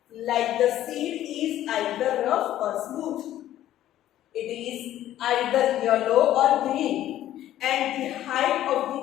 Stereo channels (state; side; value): quieter; right; 12.9 dB